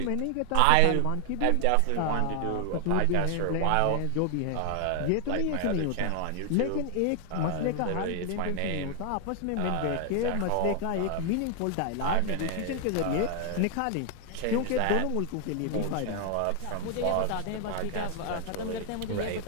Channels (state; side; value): different; both; correlation 0.00